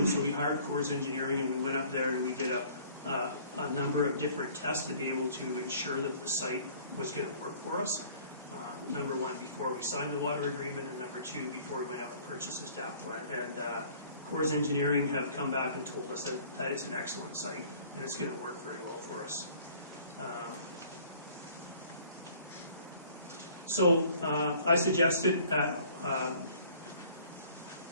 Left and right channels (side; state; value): both; inverted; correlation -0.53